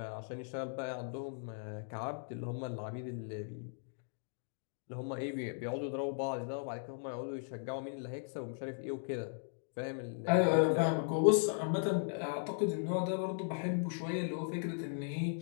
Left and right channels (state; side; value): silent; right; digital silence